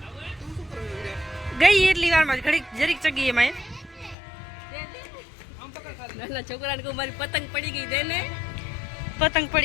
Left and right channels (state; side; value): drops out; right; at 4.2 s